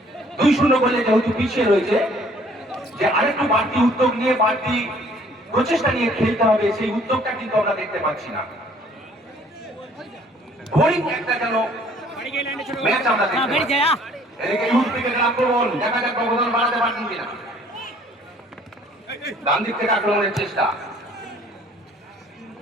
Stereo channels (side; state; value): both; normal; correlation 0.58